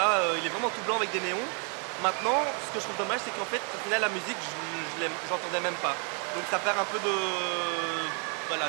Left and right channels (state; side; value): quieter; left; 38.2 dB